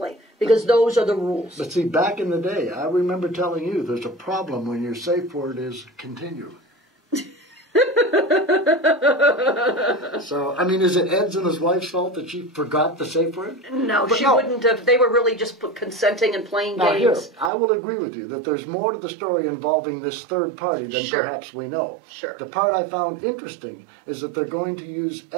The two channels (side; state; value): left; drops out; at 17.5 s